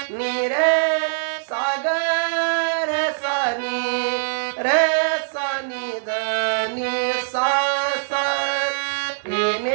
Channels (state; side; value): silent; left; 64 dB below the other